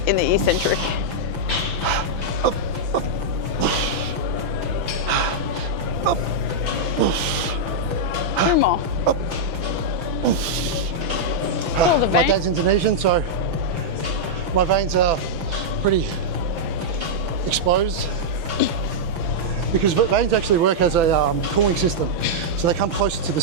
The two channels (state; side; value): late; left; 5.9 ms